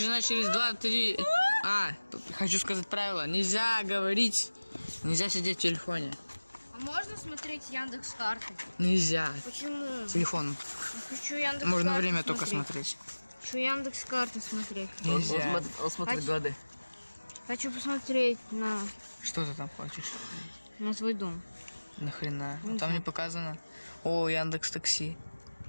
через 2-3. Хочу сказать правило. Нельзя говорить, нельзя сидеть в телефоне. А можно смотреть Яндекс.Карты? Нельзя. Почему? Телефон. Хочу Яндекс.Карты. Можно время только смотреть. Хочу Яндекс.Карты смотреть. Нельзя. Он смотрит годы. Хочу посмотреть на Что ты там хочешь? свой дом. Нахрена? Не Там знаю. не показано. О, Яндекс Такси.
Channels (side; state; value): both; inverted; correlation -1.00